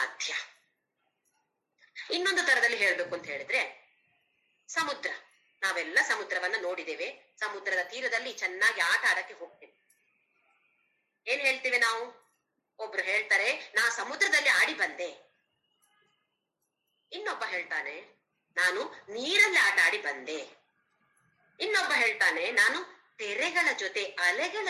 ಇನ್ನೊಂದು ತರದಲ್ಲಿ ಹೇಳ್ಬೇಕು ಅಂತ ಹೇಳಿದ್ರೆ, ಸಮುದ್ರ, ನಾವೆಲ್ಲ ಸಮುದ್ರವನ್ನ ನೋಡಿದ್ದೇವೆ. ಸಮುದ್ರದ ತೀರದಲ್ಲಿ ಚೆನ್ನಾಗಿ ಆಟ ಆಡಕ್ಕೆ ಹೋಗ್ತೇವೆ. ಏನ್ ಹೇಳ್ತೇವೆ ನಾವು? ಒಬ್ರು ಹೇಳ್ತಾರೆ ನಾ ಸಮುದ್ರದಲ್ಲಿ ಆಡಿ ಬಂದೆ, ಇನ್ನೊಬ್ಬ ಹೇಳ್ತಾನೆ ನಾನು ನೀರಲ್ಲಿ ಆಟ ಆಡಿ ಬಂದೆ, ಇನ್ನೊಬ್ಬ ಹೇಳ್ತಾನೆ ನಾನು ತೆರೆಗಳ ಜೊತೆ, ಅಲೆಗಳ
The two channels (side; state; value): both; identical; correlation 1.00